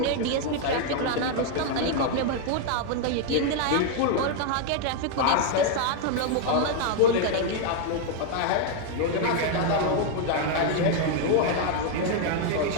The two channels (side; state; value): both; different; correlation 0.00